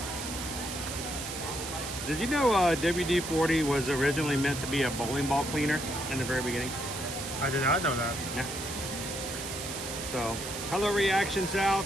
Did you know WD-40 was originally meant to be a bowling ball cleaner in the very beginning? I did not know that. Yeah. So, hello Reaction South.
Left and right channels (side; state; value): right; noise; hiss, 7 dB below the sound